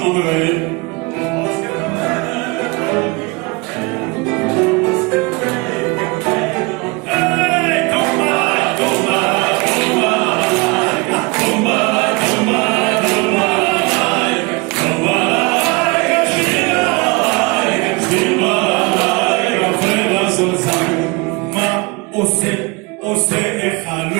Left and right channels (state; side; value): quieter; left; 27.4 dB